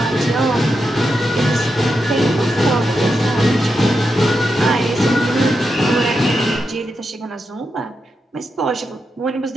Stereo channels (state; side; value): normal; both; correlation 0.86